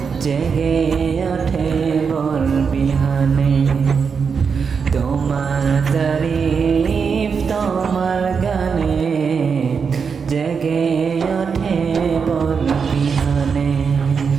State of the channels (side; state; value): left; quieter; 5.9 dB